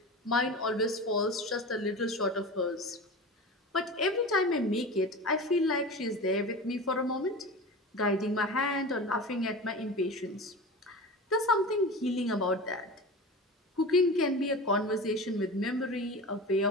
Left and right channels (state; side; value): normal; both; correlation 0.31